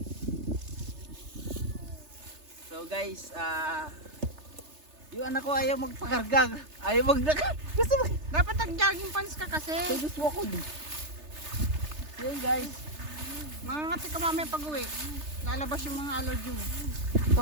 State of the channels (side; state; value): left; late; 3.3 ms